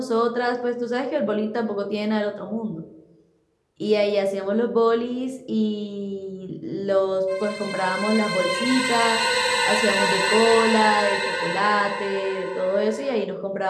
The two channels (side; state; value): both; identical; correlation 1.00